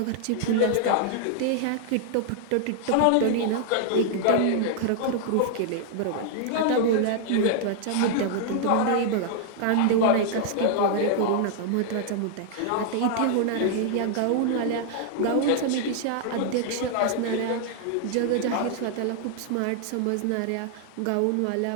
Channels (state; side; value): different; both; correlation -0.01